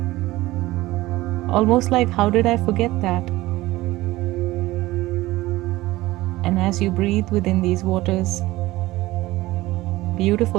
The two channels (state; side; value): quieter; left; 18.1 dB